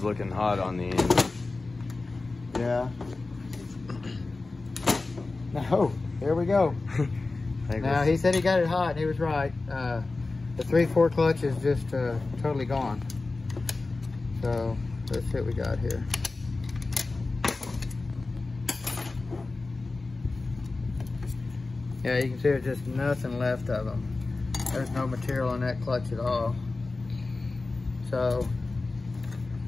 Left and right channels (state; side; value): quieter; right; 3.5 dB